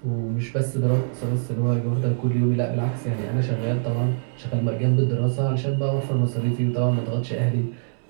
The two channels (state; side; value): silent; left; 63 dB below the other